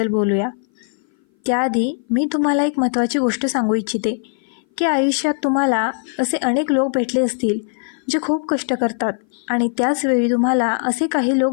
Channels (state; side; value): silent; right; 59 dB below the other